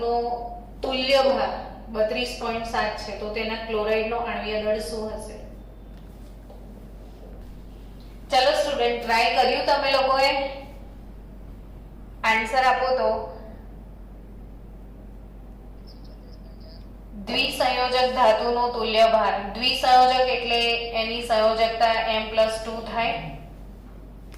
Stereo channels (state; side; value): identical; both; correlation 1.00